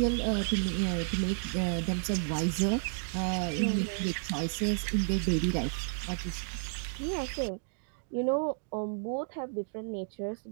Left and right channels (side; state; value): left; silent; digital silence